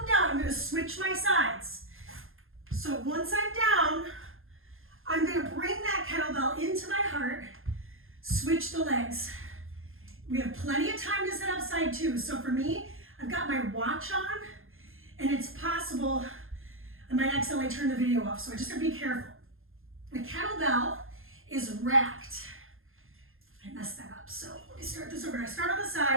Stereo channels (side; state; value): left; late; 0.60 ms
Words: down, I'm gonna switch my sides. So once I'm down, I'm gonna bring that kettlebell into my heart, switch the legs. We have plenty of time to sit up side 2. So for me, I've got my watch on, and it's possible I might accidentally turn the video off, so I just gotta be careful. The kettlebell is racked. I messed that up, so let me start this over. I start on the